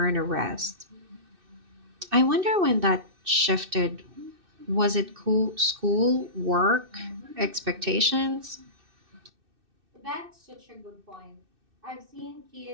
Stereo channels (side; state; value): left; late; 2.6 ms